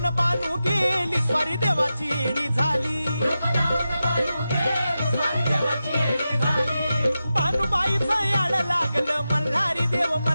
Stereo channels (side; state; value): both; inverted; correlation -0.92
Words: बानू गेली स्वारी देवाची येडी झाली भानुबाईचं याड लागलं मल्हारी देव